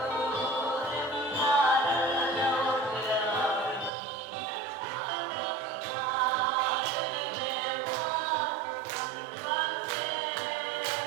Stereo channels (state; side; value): drops out; left; at 3.9 s